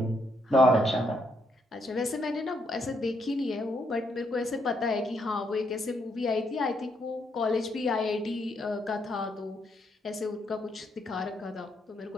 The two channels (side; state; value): both; normal; correlation 0.75